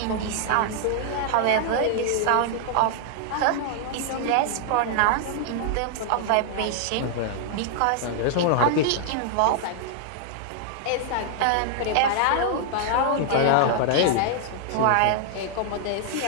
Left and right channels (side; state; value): both; different; correlation -0.01